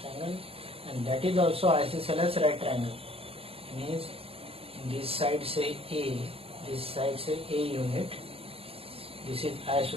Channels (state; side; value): late; left; 0.28 ms